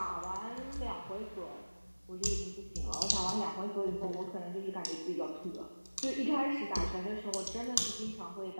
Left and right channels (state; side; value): inverted; both; correlation -1.00